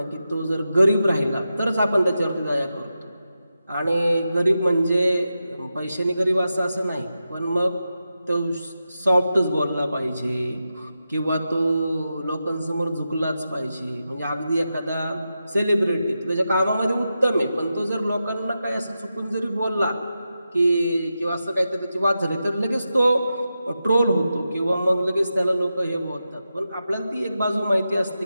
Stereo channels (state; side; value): inverted; both; correlation -0.90